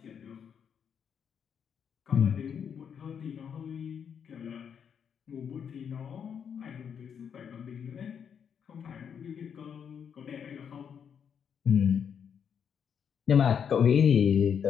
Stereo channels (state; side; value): quieter; right; 7.6 dB